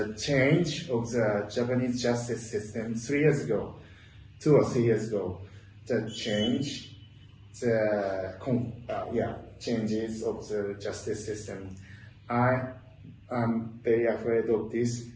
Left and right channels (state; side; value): identical; both; correlation 1.00